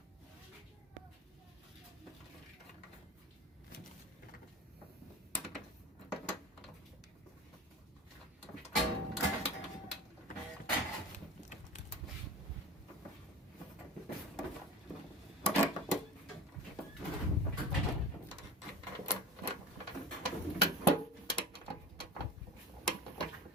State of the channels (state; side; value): normal; both; correlation 0.34